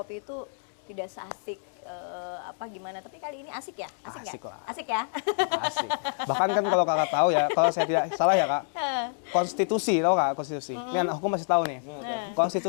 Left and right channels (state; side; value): silent; right; digital silence